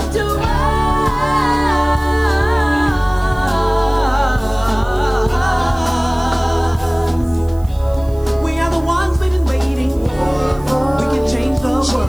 to us. We are the ones we've been waiting for. We can change the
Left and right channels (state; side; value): noise; right; hiss, 25 dB below the sound